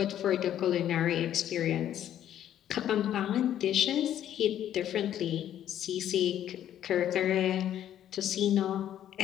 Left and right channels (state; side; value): quieter; right; 11.0 dB